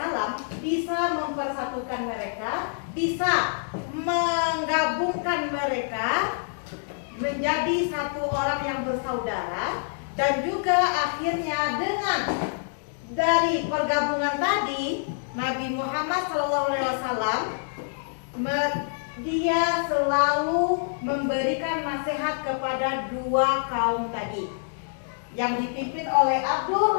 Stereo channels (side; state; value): right; silent; digital silence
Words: bisa mempersatukan mereka, bisa menggabungkan mereka menjadi satu orang yang bersaudara. Dan juga akhirnya dengan dari pergabungan tadi Nabi Muhammad SAW dia selalu memberikan nasihat kepada dua kaum tadi yang dipimpin oleh